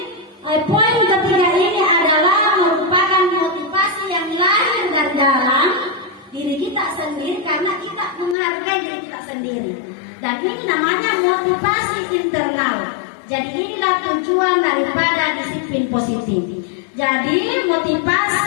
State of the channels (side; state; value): right; drops out; at 8.3 s